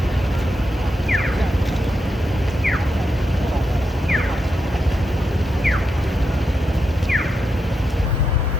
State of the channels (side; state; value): both; normal; correlation 0.85